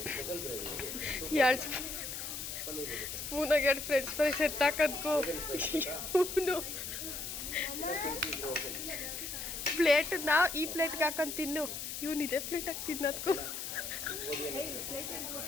2 ಸ್ಪೂನಾಗ 2 ಫ್ರೆಂಚ್ ಫ್ರೈಸ್ ಎತ್ತಾಕದ್ಕೋ ಇವನು ಪ್ಲೇಟ್ ನಾವು ಈ ಪ್ಲೇಟ್ಗೆ ಹಾಕೊಂಡು ತಿನ್ನು ಇವನು ಇದೇ ಪ್ಲೇಟಾಗಿ ತಿನ್ನೋದ್ಕೋ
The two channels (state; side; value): noise; left; hiss, 6 dB below the sound